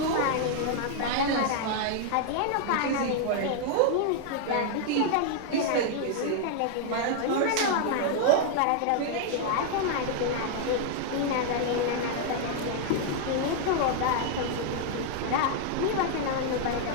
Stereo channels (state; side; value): different; both; correlation 0.00